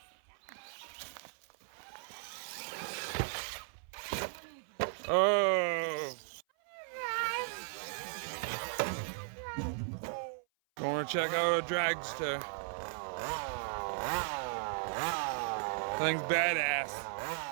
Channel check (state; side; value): silent; left; 53 dB below the other